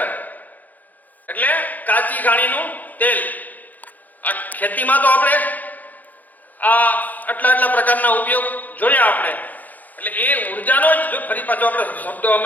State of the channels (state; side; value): late; right; 0.082 ms